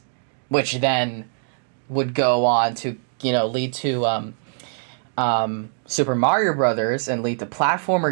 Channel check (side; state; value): left; silent; digital silence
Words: which then would go on to, lead to Super Mario Brothers and lead to